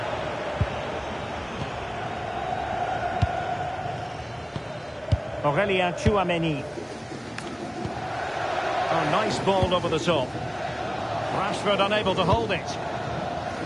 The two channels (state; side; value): identical; both; correlation 1.00